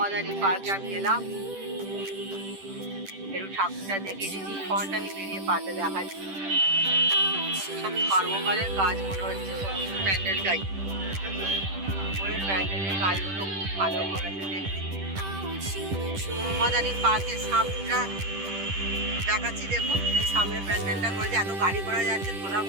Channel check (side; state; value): left; late; 10 ms